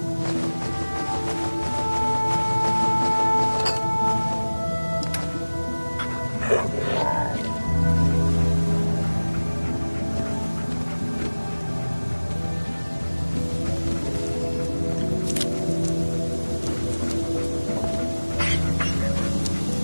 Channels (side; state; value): both; inverted; correlation -1.00